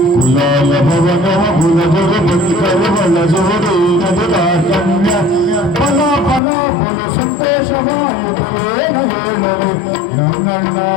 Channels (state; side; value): drops out; right; at 6.4 s